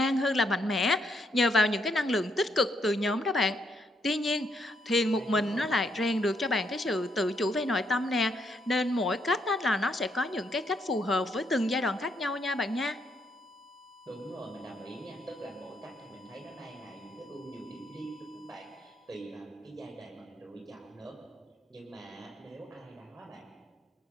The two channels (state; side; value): normal; both; correlation 0.75